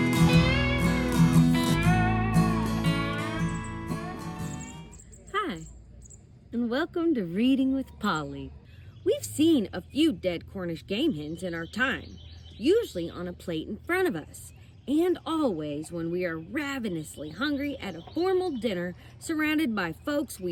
Hi, and welcome to Reading with Polly. We've seen a few dead Cornish game hens in our time, usually on a plate in front of us, and always when we are ravenously hungry at a formal dinner surrounded by folks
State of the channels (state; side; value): identical; both; correlation 1.00